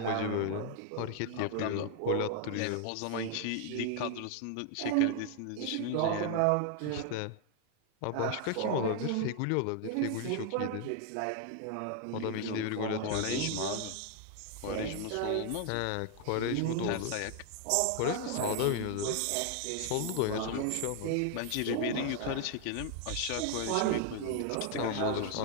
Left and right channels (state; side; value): different; both; correlation 0.00